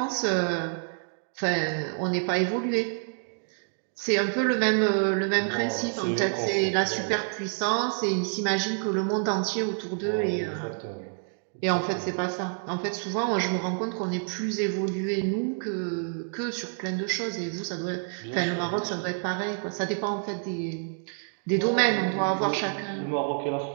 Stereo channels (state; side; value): silent; left; 58 dB below the other